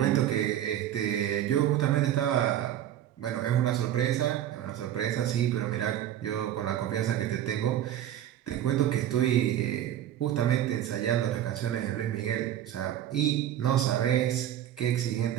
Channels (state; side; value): quieter; left; 11.4 dB